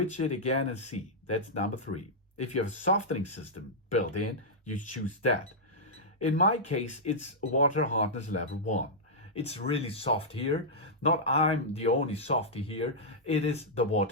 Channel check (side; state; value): both; normal; correlation -0.09